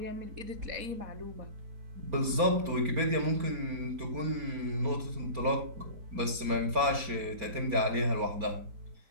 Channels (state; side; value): late; left; 4.3 ms